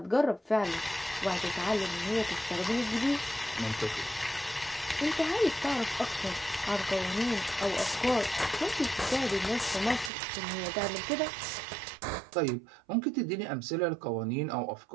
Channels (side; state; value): left; drops out; at 10.1 s